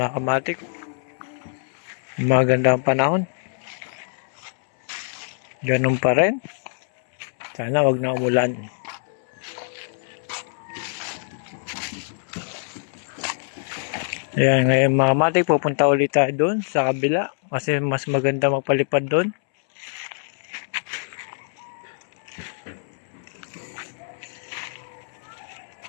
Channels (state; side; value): silent; right; 62 dB below the other